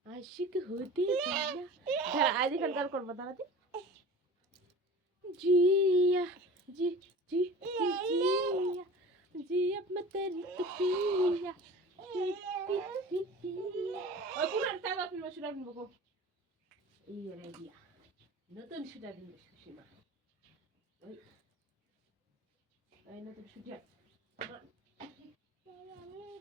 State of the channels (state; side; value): normal; both; correlation 0.39